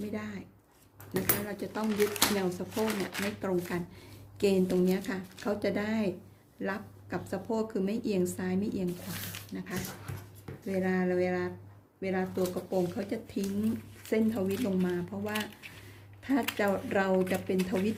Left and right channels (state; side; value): identical; both; correlation 1.00